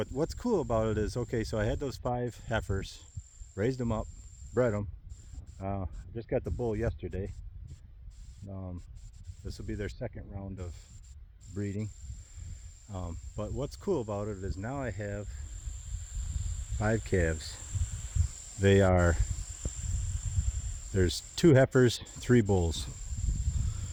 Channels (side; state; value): both; identical; correlation 1.00